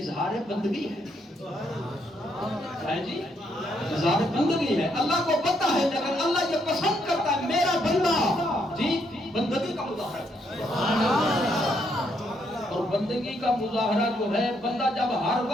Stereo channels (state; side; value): normal; both; correlation 0.74